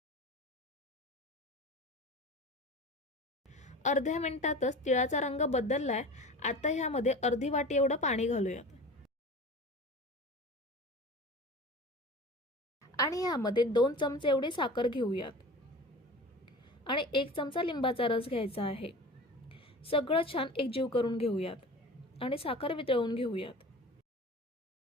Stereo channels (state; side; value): normal; both; correlation 0.36